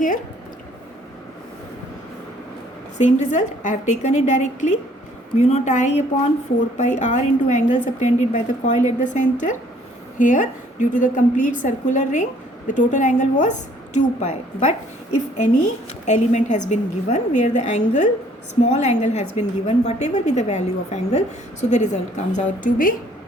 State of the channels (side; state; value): both; normal; correlation 0.61